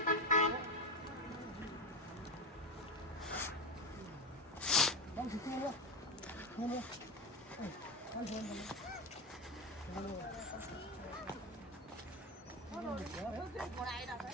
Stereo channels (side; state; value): both; normal; correlation 0.17